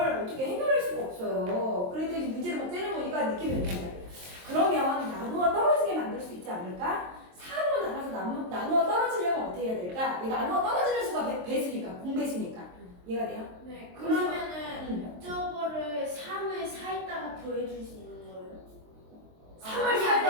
어떻게 해결할 수가 없어요. 그랬더니 문제를 막 째려보니까 느낌이 온단 말이에요. 그러면 나누어 떨어지게 만들 수 있지 않을까? 4로 나눠서 나누어 떨어지려면 어떻게 해야 될까? 이 나누어 떨어지는 수가 배수니까, 공배수니까. 이해가 돼요? 네. 그러면은 응. 저거를 3을 4에다가 더해줄 수 있는 거예요? 3을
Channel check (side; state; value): left; late; 23 ms